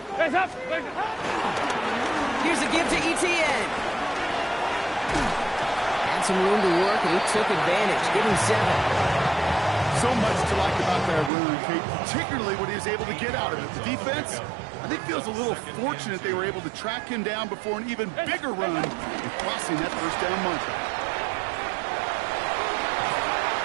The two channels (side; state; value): left; drops out; at 11.3 s